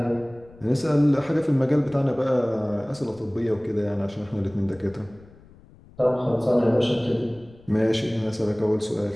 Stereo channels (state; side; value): noise; left; rumble, 24 dB below the sound